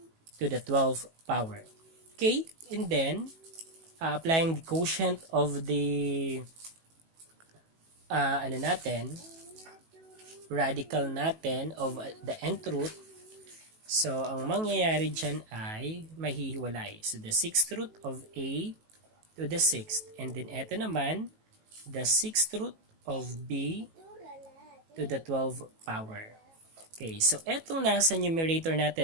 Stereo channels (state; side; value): late; left; 18 ms